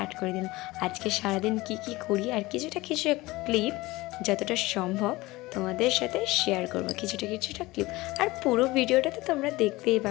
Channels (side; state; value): right; quieter; 20.2 dB